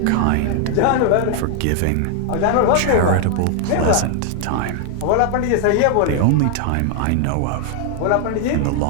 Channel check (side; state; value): both; different; correlation 0.00